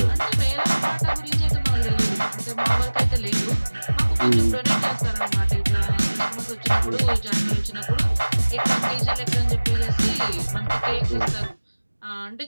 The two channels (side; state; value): both; inverted; correlation -1.00